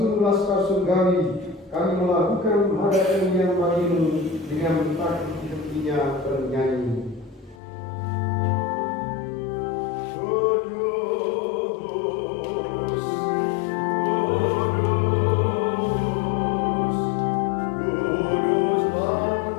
laskar surgawi, kami melakukan hada kemuliaan bagimu dengan tak henti-hentinya bernyanyi. Kudus,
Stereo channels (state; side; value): drops out; right; at 7.6 s